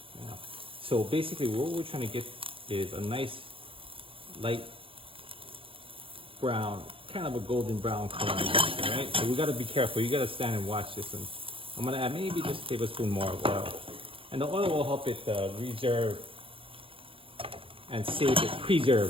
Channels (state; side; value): late; left; 0.26 ms